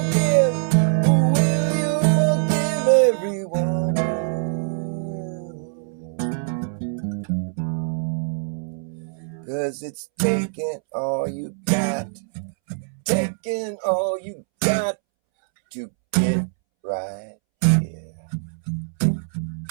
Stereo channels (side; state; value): left; silent; 63 dB below the other